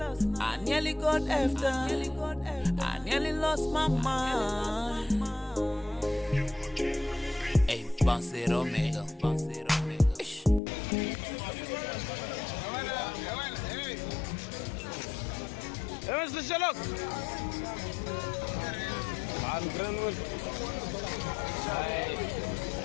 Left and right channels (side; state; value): right; drops out; at 10.6 s